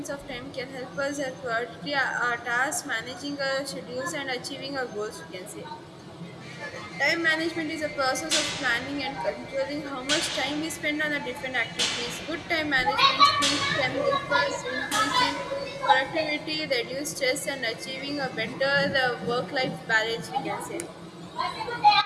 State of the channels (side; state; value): both; identical; correlation 1.00